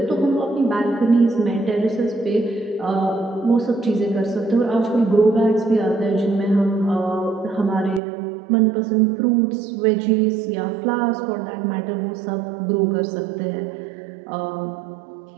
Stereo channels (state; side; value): drops out; left; at 8.0 s